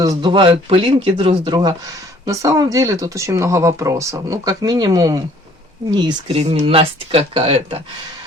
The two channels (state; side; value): normal; both; correlation 0.57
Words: пылинки друг с друга. На самом деле тут очень много вопросов. Ну, как минимум, неискренность какая-то.